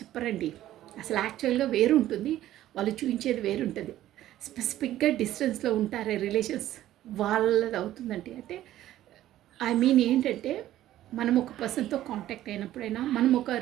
అసలు యాక్చువల్గా వేరు ఉంటుంది, వాళ్ళు చూపించేది వేరుంటుంది. స్పెసిఫిక్గా డిస్టెన్స్లో ఉంటారే రిలేషన్స్, వాళ్ళది అవుతుందండి. అంటే ఐ మీన్ ఏంటంటే మనం ఒక పర్సన్తో కాంటాక్ట్ అయినప్పుడైనా, మనం ఒక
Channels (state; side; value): quieter; left; 13.5 dB